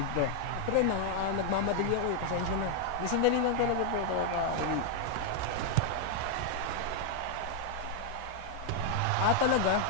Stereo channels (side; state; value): both; different; correlation 0.00